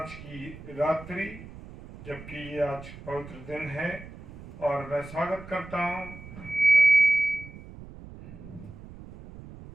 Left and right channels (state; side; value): noise; right; rumble, 16 dB below the sound